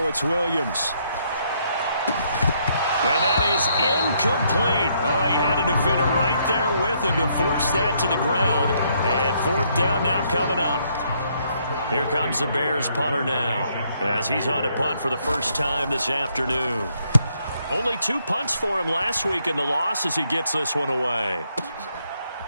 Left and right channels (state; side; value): inverted; both; correlation -0.72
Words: it's Williams. And that is incomplete. Oh, he had a defender right there with him to force that to the ground. And 4th down now coming up. Here comes the Bears punter now, as he's on to punt for the first time this afternoon. Only 2 punts for him last week in the loss as he gets this one away.